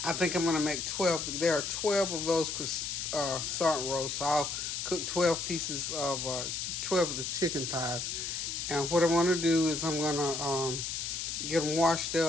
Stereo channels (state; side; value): noise; left; hiss, 3 dB below the sound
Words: I think I'm going to make 12. There are 12 of those croissant rolls, so I'll cook 12 pieces of 12 of the chicken thighs. And what I'm going to do is I'm going to get them washed